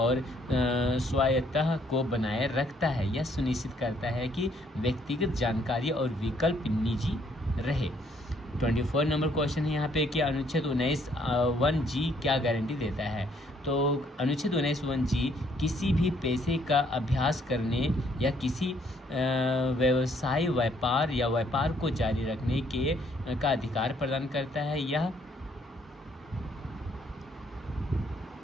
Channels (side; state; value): both; normal; correlation 0.67